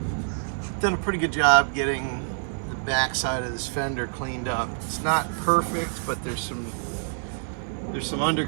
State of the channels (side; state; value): left; silent; 61 dB below the other